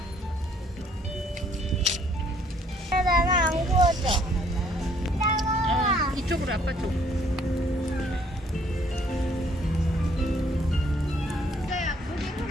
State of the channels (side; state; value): both; normal; correlation 0.64